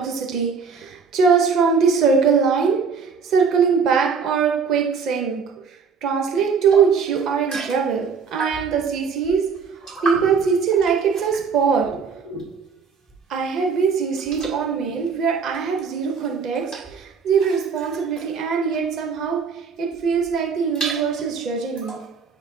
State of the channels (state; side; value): quieter; left; 5.7 dB